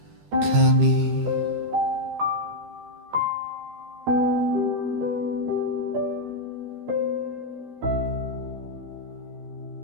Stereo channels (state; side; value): late; left; 13 ms